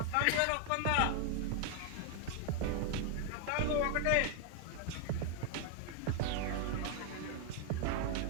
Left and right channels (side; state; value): both; different; correlation 0.00